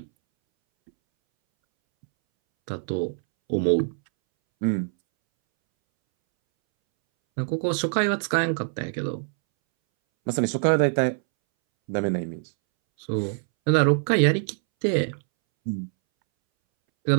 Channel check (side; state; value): left; silent; 62 dB below the other